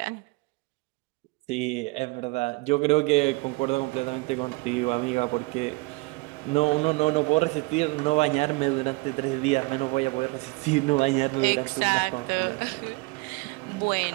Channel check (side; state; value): left; quieter; 25.2 dB